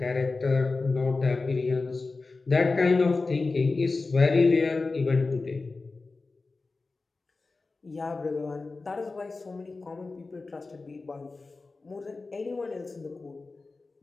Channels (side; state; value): right; quieter; 3.7 dB